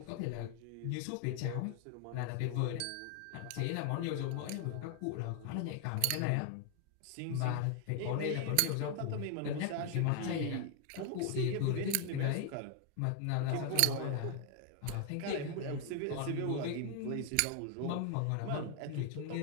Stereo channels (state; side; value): different; both; correlation 0.00